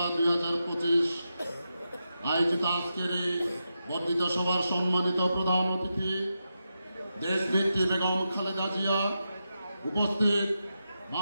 2025 আয়োজিত আজকের এই বর্ধিত সভার সম্মানিত প্রধান অতিথি দেশনেত্রী বেগম খালেদা জিয়া, উপস্থিত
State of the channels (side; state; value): both; inverted; correlation -0.88